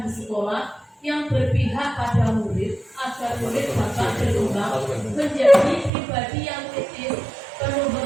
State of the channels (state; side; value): drops out; left; at 5.9 s